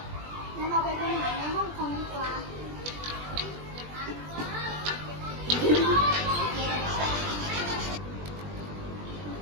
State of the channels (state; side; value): late; left; 20 ms